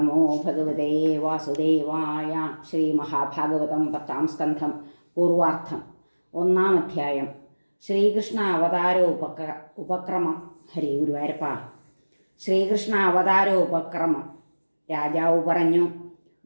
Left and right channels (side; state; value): both; inverted; correlation -1.00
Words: ഭഗവതേ വാസുദേവായ. ശ്രീ മഹാഭാഗവതം 10-ാം സ്കന്ധം പൂർവാർത്ഥം. 1-ാം അധ്യായം. ശ്രീകൃഷ്ണ ഉപക്രമം. ഹരേ ഗുരുവായൂരപ്പ. ശ്രീകൃഷ്ണ ഉപക്രമം. രാജാവ് പറഞ്ഞു,